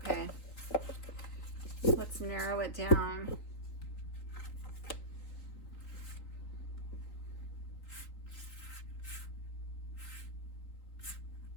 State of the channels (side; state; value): right; late; 3.9 ms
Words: Let's narrow it down.